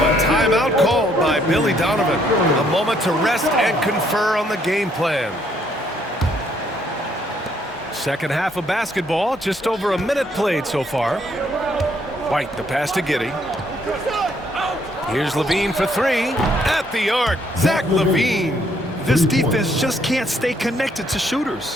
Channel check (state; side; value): normal; both; correlation 0.69